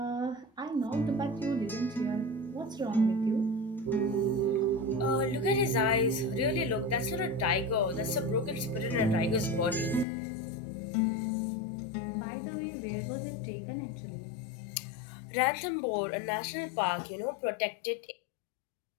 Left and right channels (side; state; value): right; drops out; at 10.1 s